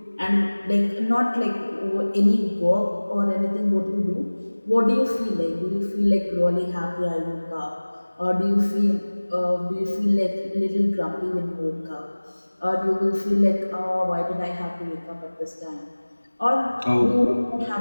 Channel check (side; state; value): both; inverted; correlation -1.00